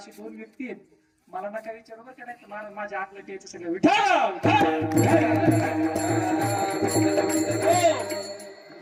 2 व्यक्ती आहेत. मला नका विचारू बरं का, नाही माझ्या अंगलट यायचं सगळं विठाल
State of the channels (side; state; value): both; identical; correlation 1.00